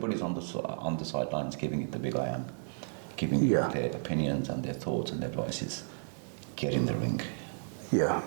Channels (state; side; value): silent; left; digital silence